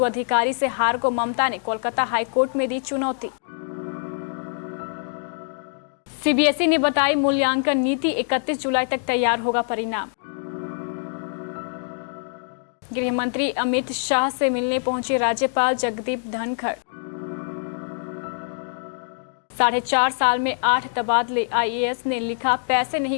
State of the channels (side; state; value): right; silent; digital silence